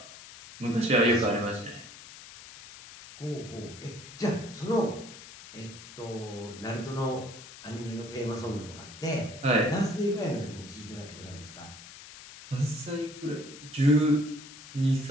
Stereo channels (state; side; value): noise; left; hiss, 16 dB below the sound